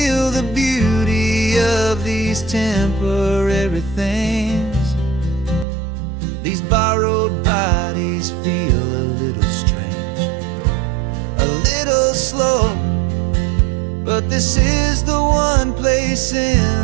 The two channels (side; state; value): left; drops out; at 5.7 s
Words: the beauty of these temporary things. These borrowed bodies feel a little strange, a little slow, but this is the one place